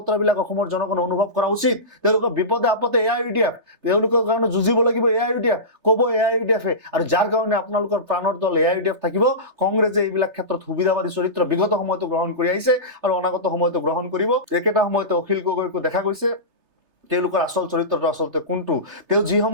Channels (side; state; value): left; late; 3.3 ms